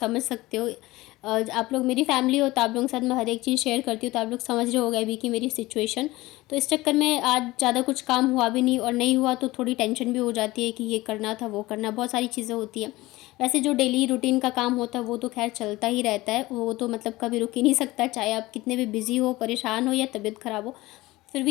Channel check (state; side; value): quieter; right; 19.3 dB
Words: सकते हो, आप लोग मेरी फैमिली हो तो आप लोगों के साथ मैं हर एक चीज़ शेयर करती हूँ, तो आप लोग समझ रहे होगे अभी कि मेरी सिचुएशन। तो इस चक्कर में आज ज़्यादा कुछ काम हुआ भी नहीं, और नहीं हुआ तो थोड़ी टेंशन भी हो जाती है कि ये करना था वो करना, बहुत सारी चीज़ें होती हैं। वैसे जो डेली रूटीन का काम होता है वो तो खैर चलता ही रहता है, वो तो मतलब कभी रुक ही नहीं सकता, चाहे आप कितने भी बिज़ी हो, परेशान हो या तबीयत ख़राब हो, फिर